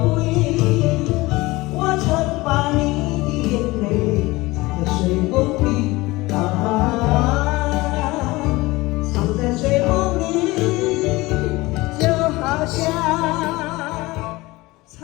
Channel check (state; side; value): quieter; right; 20.9 dB